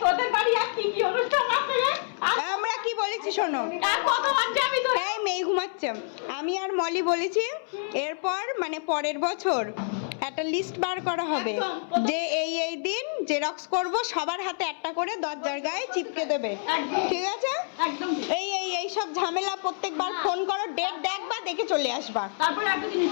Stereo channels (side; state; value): right; silent; 60 dB below the other